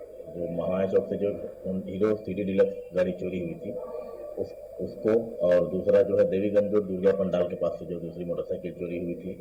जो महामाया चौक से जो हीरो सिटी डीलक्स गाड़ी चोरी हुई थी उसको, और दूसरा जो है देवीगंज रोड दुर्गा पंडाल के पास से जो दूसरी मोटरसाइकिल चोरी हुई थी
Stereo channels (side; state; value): both; identical; correlation 1.00